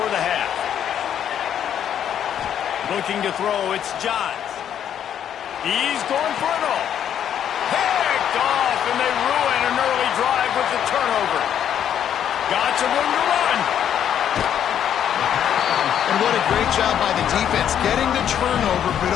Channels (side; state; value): right; quieter; 9.5 dB